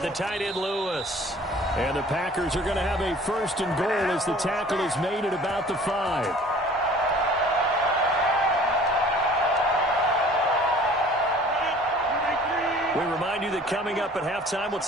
the tight end Lewis. And the Packers are going to have a 1st and goal as the tackle is made at about the 5. We remind you that coming up at halftime, we'll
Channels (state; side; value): normal; both; correlation 0.49